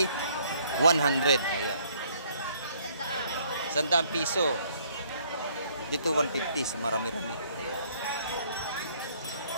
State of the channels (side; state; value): both; inverted; correlation -0.63